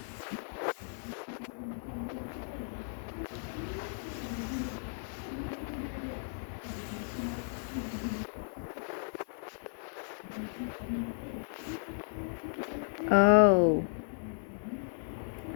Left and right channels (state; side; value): silent; right; 55 dB below the other